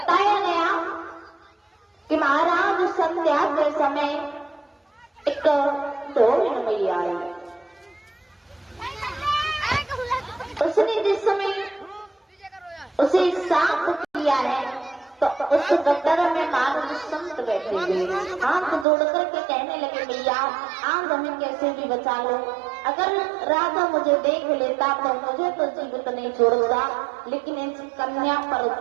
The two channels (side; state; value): left; drops out; at 18.9 s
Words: गया कि महाराज संध्या के समय एक ढोल मैया आई। उसने जिस समय उसे साफ किया है तो उस गटर में महाराज संत बैठे हुए हाथ जोड़ करके कहने लगे, भैया आज हमें कैसे भी बचा लो। अगर राजा मुझे देख लेता तो मुझे तो जीवित नहीं छोड़ता, लेकिन इस कन्या पर